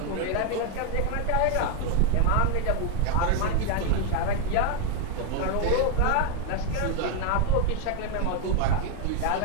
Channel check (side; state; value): both; different; correlation 0.01